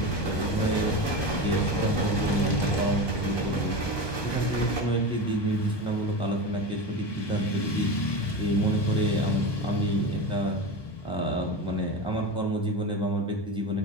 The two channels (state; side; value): late; right; 1.2 ms